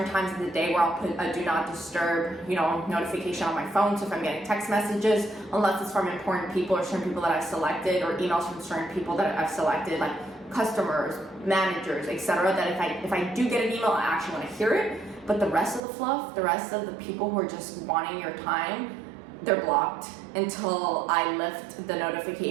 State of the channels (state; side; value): drops out; left; at 15.8 s